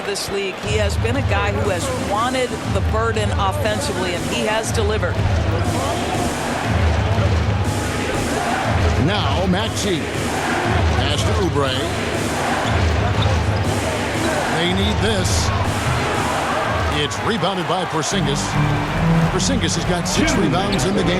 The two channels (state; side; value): identical; both; correlation 1.00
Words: this league, he has been a guy who has wanted the burden offensively, and he has delivered. Now Maxey. Pass to Oubre. They need this. It's rebounded by Porzingis. Porzingis has got 6 rebounds in the